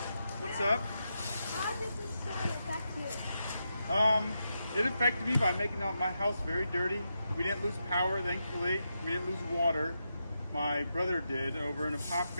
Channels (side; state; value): both; inverted; correlation -0.85